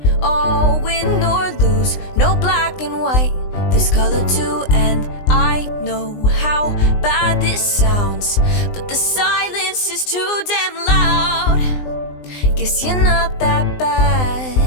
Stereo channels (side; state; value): right; late; 20 ms